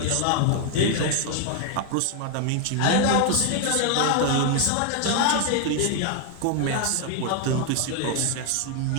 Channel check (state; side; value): different; both; correlation 0.00